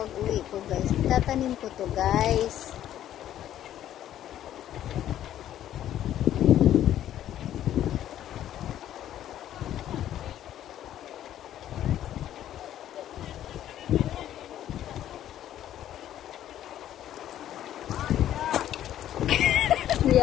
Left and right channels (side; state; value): right; quieter; 11.7 dB